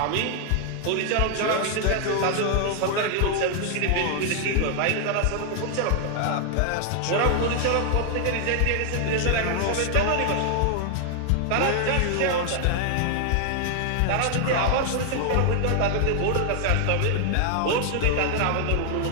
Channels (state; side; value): different; both; correlation 0.00